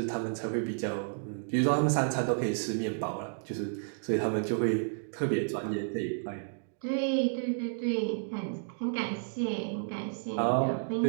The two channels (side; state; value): left; silent; digital silence